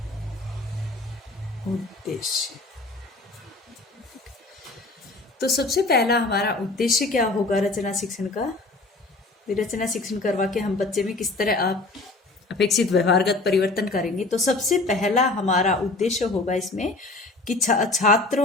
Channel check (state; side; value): quieter; right; 3.2 dB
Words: उद्देश्य। तो सबसे पहला हमारा उद्देश्य क्या होगा रचना शिक्षण का? रचना शिक्षण करवा के हम बच्चे में किस तरह आप अपेक्षित व्यवहारगत परिवर्तन करेंगे। तो सबसे पहला हमारा उद्देश्य होगा इसमें कि